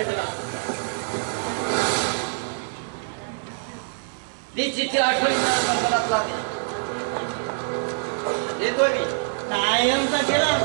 मला. ती चिठ्ठी आठवणीत देतोय मी. कायमचा केला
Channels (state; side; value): silent; left; digital silence